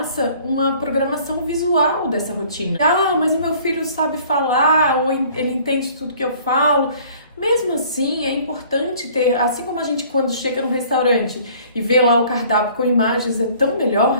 uma programação visual dessa rotina. Ah, mas o meu filho sabe falar, ou ele entende tudo que eu falo. Mesmo assim, é importante ter, assim como a gente quando chega no restaurante e vê lá o cardápio com imagens, é tão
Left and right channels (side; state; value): both; inverted; correlation -0.54